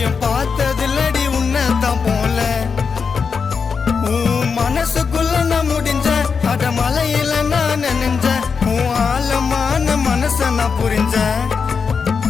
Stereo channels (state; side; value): quieter; right; 5.7 dB